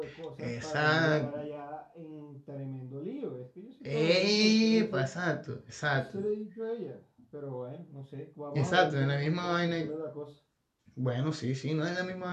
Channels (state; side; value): identical; both; correlation 1.00